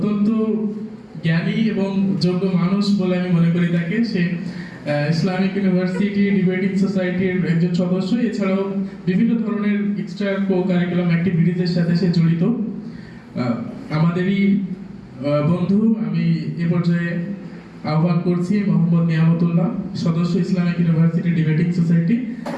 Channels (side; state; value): both; identical; correlation 1.00